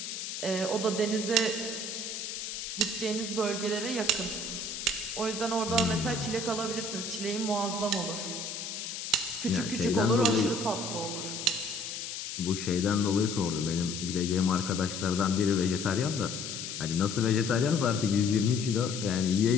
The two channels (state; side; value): noise; left; hiss, 6 dB below the sound